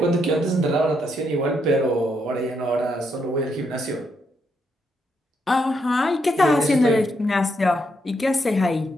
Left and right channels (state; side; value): normal; both; correlation 0.78